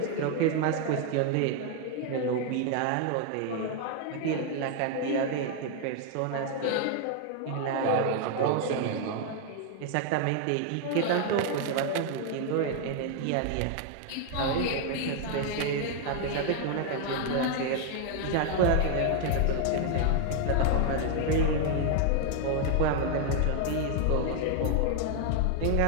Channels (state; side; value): different; both; correlation 0.00